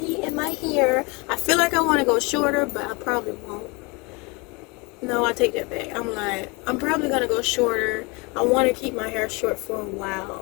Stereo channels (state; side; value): quieter; right; 28.0 dB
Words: and my hair. I feel like I want to go shorter, but I probably won't. No, I take that back. I'm probably going to go shorter. I want to keep my hair short for a